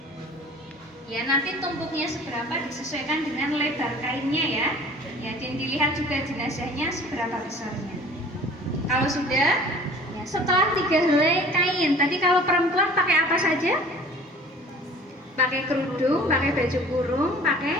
Ya, nanti tumpuknya seberapa disesuaikan dengan lebar kainnya ya. Ya, dan dilihat juga jenazahnya seberapa besarnya. Kalau sudah, ya setelah 3 helai kain, tadi kalau perempuan pakai apa saja? Pakai kerudung, pakai baju kurung,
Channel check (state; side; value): normal; both; correlation 0.47